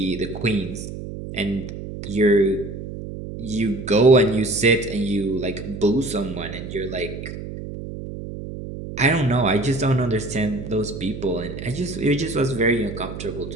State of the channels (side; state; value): right; noise; hum, 9 dB below the sound